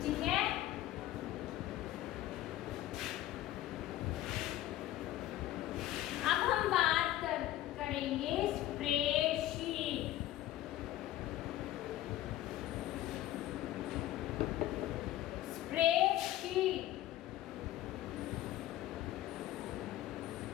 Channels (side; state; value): right; quieter; 14.2 dB